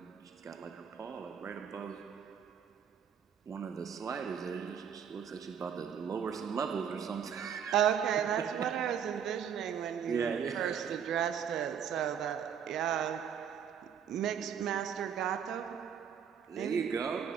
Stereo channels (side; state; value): left; quieter; 8.0 dB